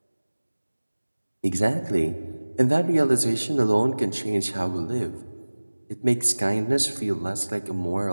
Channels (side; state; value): both; inverted; correlation -1.00